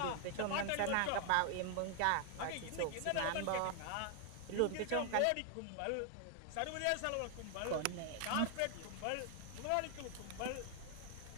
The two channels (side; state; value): both; different; correlation 0.00